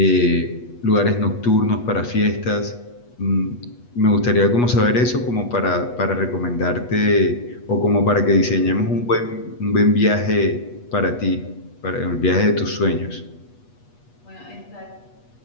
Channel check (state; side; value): late; right; 8.3 ms